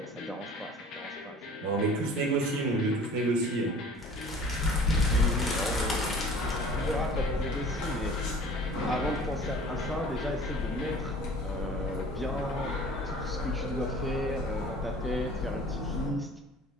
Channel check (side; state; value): both; normal; correlation 0.47